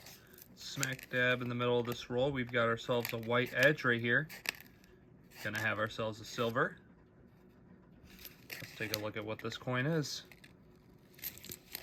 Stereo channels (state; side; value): identical; both; correlation 1.00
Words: Smack dab in the middle of this roll, we've got ourselves a white edge right here. Gonna have ourselves a silver. Let's take a look at what this coin is.